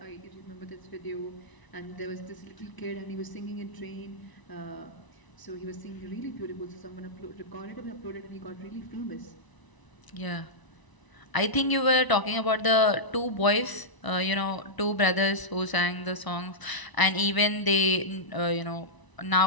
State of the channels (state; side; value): late; right; 1.0 ms